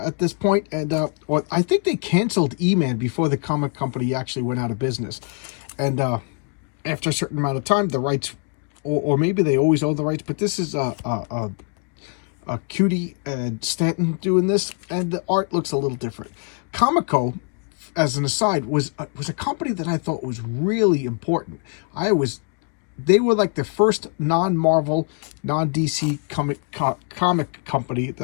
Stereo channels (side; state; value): right; quieter; 39.7 dB